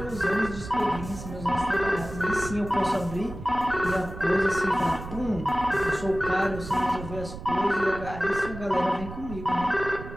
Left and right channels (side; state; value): right; noise; rumble, 11 dB below the sound